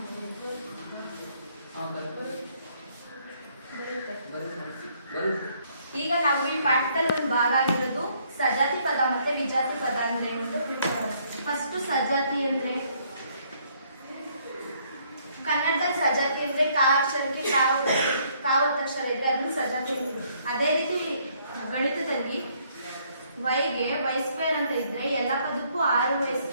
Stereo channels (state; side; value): inverted; both; correlation -0.67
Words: ಈಗ ನಾವು ಈ ಪಾಠದಲ್ಲಿ ಒಂದು ಭಾಗ ಆಗಿರೋದು ಸಜಾತಿ ಪದ ಮತ್ತೆ ವಿಜಾತಿ ಪದ ಅಂದ್ರೆ ಏನು ಅಂತ ತಿಳ್ಕೊಳ್ಳೋಣ. ಫಸ್ಟ್ ಸಜಾತಿ ಅಂದ್ರೆ ಕನ್ನಡದಲ್ಲಿ ಸಜಾತಿ ಅಂದ್ರೆ ಕಾ ಅಕ್ಷರಕ್ಕೆ ಕಾವತ್ತಕ್ಷರ ಇದೆ, ಅದನ್ನು ಸಜಾತಿ ಅಂತೀವಿ. ಅದೇ ರೀತಿ ಗಣಿತದಲ್ಲಿ ವೈಗೆ y² ಅಂತ ಇದ್ರೆ ಎಲ್ಲ ಪದಕ್ಕೂ 6y²,